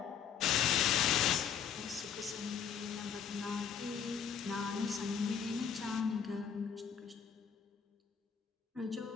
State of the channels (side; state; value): right; quieter; 7.8 dB